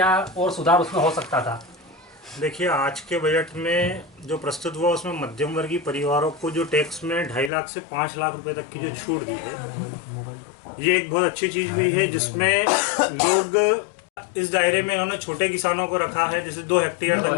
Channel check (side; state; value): right; drops out; at 7.5 s